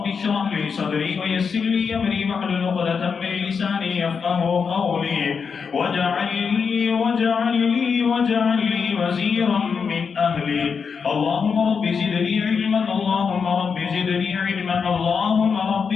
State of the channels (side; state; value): right; quieter; 5.9 dB